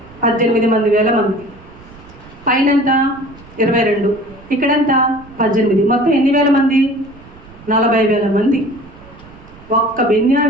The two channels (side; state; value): right; noise; rumble, 22 dB below the sound